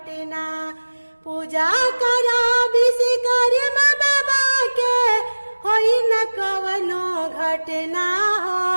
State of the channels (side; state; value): both; inverted; correlation -1.00